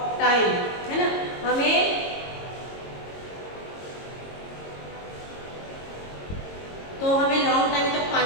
time, है ना. हमें long time तक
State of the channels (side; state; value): right; late; 22 ms